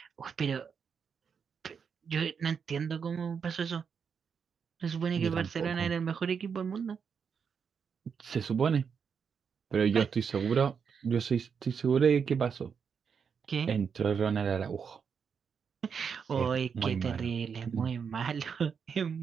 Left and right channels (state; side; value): quieter; left; 6.5 dB